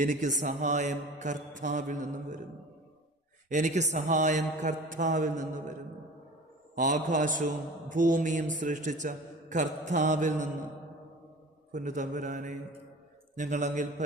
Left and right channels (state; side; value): normal; both; correlation 0.40